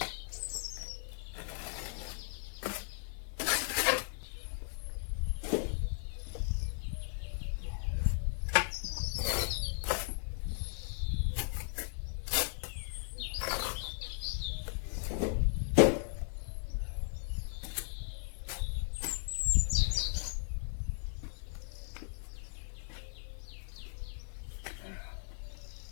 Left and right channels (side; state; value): right; silent; 53 dB below the other